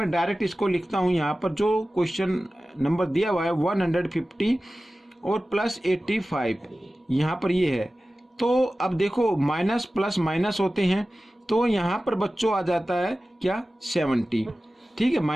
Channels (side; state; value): both; normal; correlation 0.96